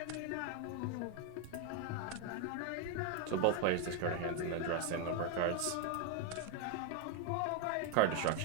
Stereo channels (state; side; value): different; both; correlation 0.01